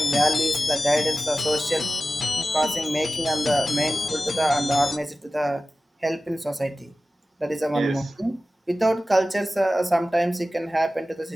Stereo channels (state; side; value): normal; both; correlation 0.95